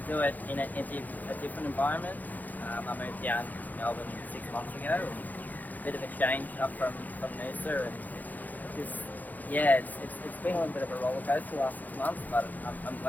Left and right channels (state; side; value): late; right; 0.082 ms